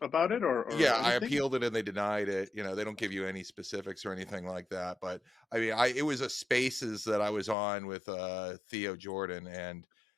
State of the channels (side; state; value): right; drops out; at 7.6 s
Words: about it or Yeah, anything? I appealed it and they denied it. You know, they don't give you any specifics or anything like that. But I mean, it was a Spaces that I was on with Theo Jordan, and